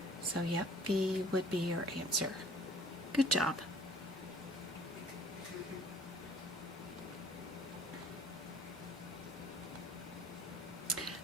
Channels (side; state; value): both; normal; correlation 0.52